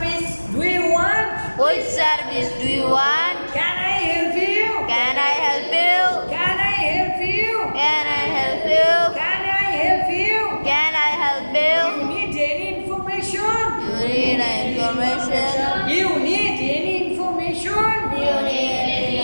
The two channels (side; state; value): both; inverted; correlation -1.00